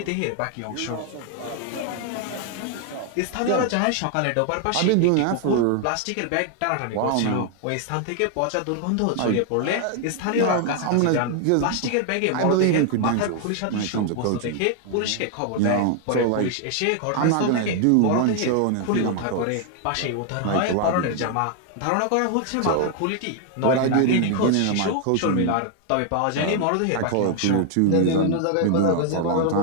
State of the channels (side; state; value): both; different; correlation 0.00